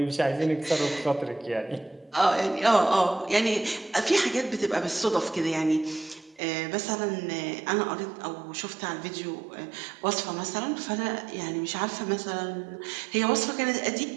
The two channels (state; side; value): drops out; left; at 6.4 s